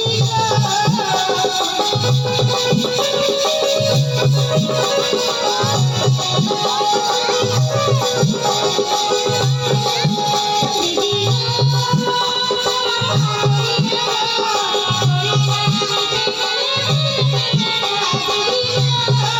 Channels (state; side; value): identical; both; correlation 1.00